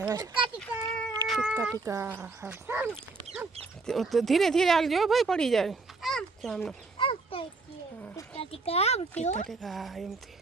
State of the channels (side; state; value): left; quieter; 3.8 dB